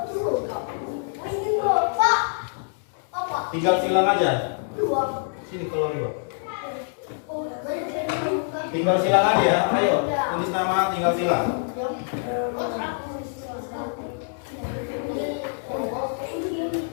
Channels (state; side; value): silent; right; 62 dB below the other